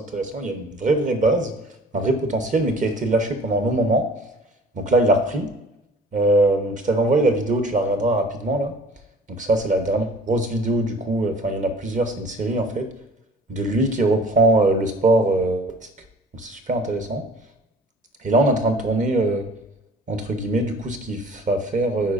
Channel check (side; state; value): both; normal; correlation 0.48